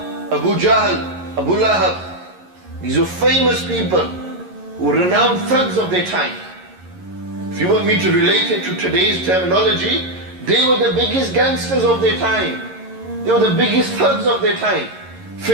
Abu Jahl, Abu Lahab. These are famous people who were renowned thugs of their time. If you want me to relate it to today's terminology, they were the biggest gangsters of their time. They were the biggest thugs of their time.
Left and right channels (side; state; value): left; late; 11 ms